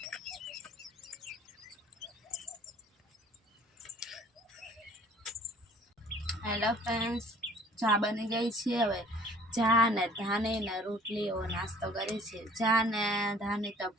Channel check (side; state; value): both; normal; correlation 0.53